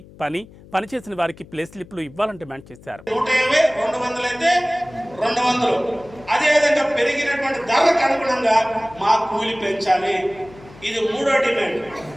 పనిచేసిన వారికి ప్లే స్లిప్లు ఇవ్వాలని డిమాండ్ చేశారు. 150, 200 అయితే 200, అదేవిధంగా పెరిగినటువంటి ధరలకు అనుగుణంగా మా కూలి పెంచాలి. ఇది 3వ డిమాండ్.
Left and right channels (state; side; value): noise; left; hum, 22 dB below the sound